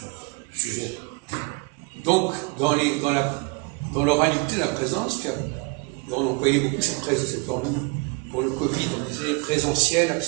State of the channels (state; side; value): quieter; left; 30.1 dB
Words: Sujet. Donc, dans l'oralité, la présence, on employait beaucoup cette formule. Pour le Covid, on disait présentiel,